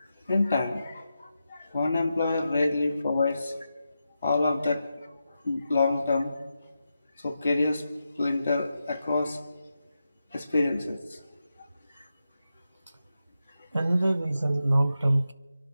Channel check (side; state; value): both; inverted; correlation -0.89